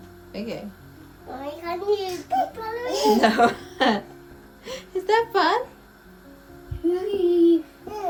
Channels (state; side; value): identical; both; correlation 1.00